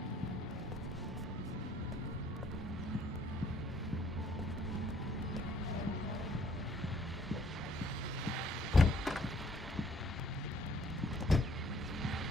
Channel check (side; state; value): both; normal; correlation 0.62